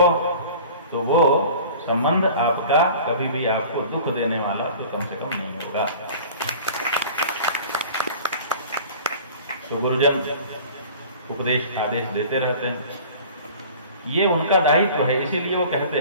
तो वो संबंध आपका कभी भी आपको दुख देने वाला तो कम से कम नहीं होगा। तो गुरुजन उपदेश आदेश देते रहते हैं, ये उनका दायित्व है, इसीलिए वो कहते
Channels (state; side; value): inverted; both; correlation -0.43